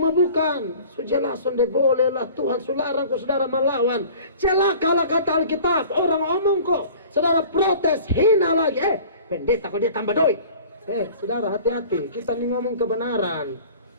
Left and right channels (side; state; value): both; inverted; correlation -0.45